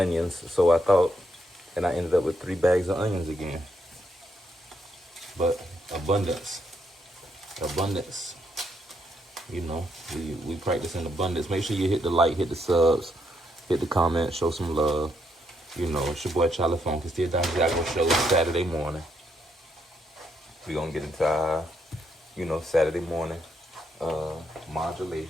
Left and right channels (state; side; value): normal; both; correlation 0.77